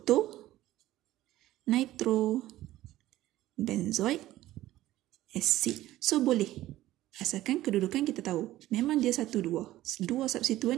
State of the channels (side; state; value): left; quieter; 15.2 dB